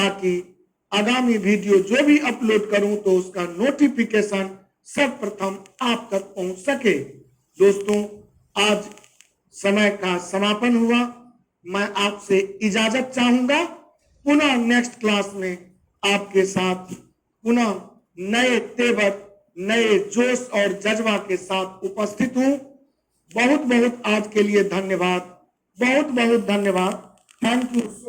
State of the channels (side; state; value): both; identical; correlation 1.00